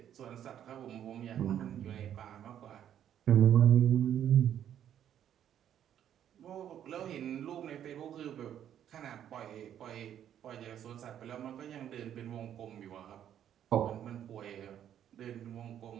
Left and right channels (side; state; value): left; quieter; 10.1 dB